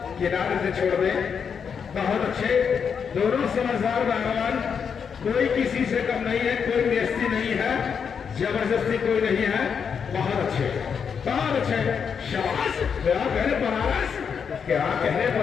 किनारे से छोड़ दे। बहुत अच्छे, दोनों समझदार पहलवान। कोई किसी से कम नहीं है, कोई बेइज्जती नहीं है, जबरदस्ती कोई नहीं है। बहुत अच्छे, बहुत अच्छे, शाबाश। क्या कह रहे बनारस, क्या कह रहे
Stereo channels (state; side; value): quieter; right; 6.7 dB